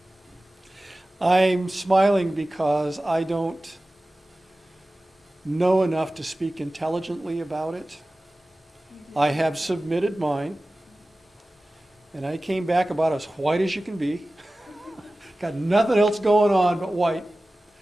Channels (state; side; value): normal; both; correlation 0.96